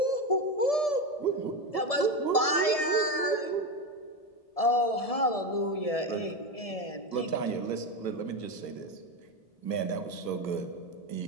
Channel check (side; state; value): right; late; 1.7 ms